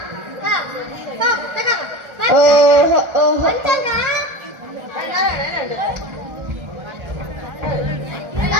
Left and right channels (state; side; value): late; left; 1.4 ms